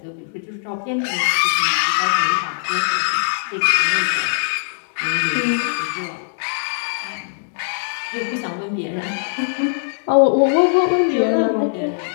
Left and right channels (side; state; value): right; silent; digital silence